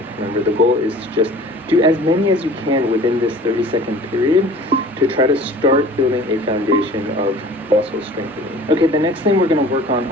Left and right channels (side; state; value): both; normal; correlation 0.45